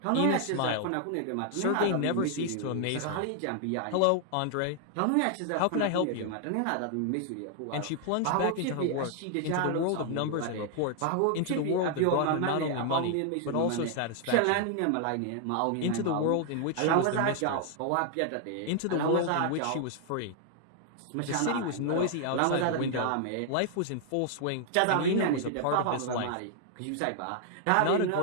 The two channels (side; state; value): both; different; correlation 0.00